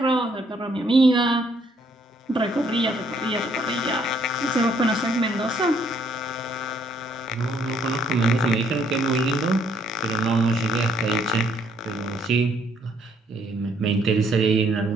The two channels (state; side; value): normal; both; correlation 0.67